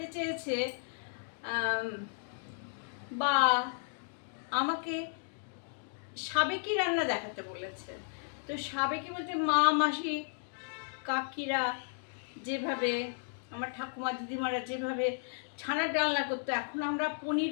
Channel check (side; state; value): right; silent; digital silence